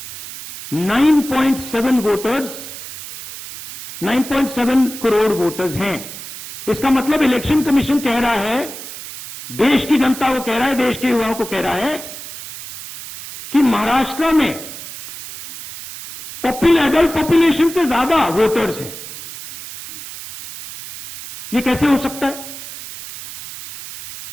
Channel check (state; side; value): noise; right; hiss, 12 dB below the sound